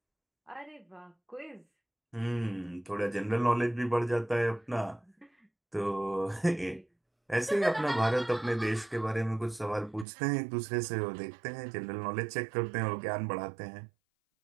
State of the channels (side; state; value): left; drops out; at 10.1 s